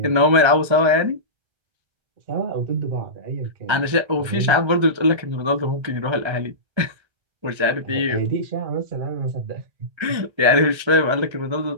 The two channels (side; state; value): left; late; 1.3 ms